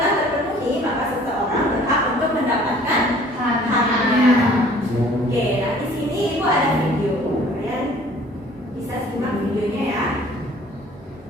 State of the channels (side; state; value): both; normal; correlation 0.53